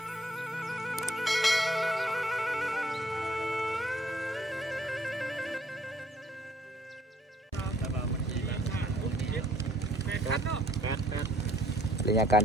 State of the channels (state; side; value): normal; both; correlation 0.63